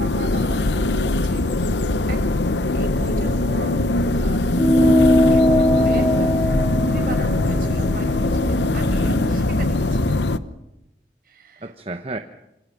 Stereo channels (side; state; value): both; normal; correlation 0.69